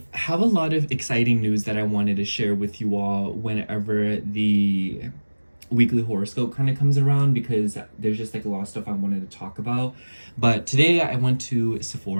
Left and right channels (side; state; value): both; inverted; correlation -1.00